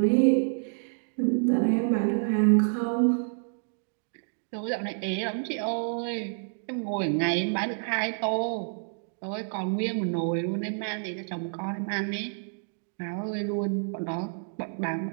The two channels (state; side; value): silent; left; digital silence